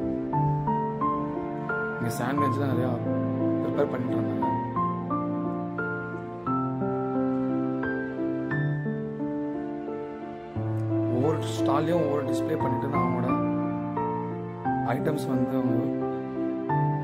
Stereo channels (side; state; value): both; identical; correlation 1.00